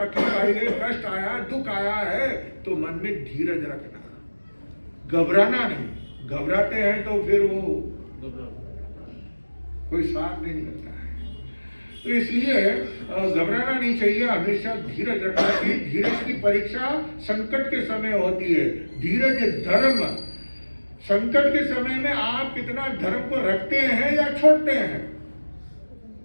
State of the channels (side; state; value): both; inverted; correlation -1.00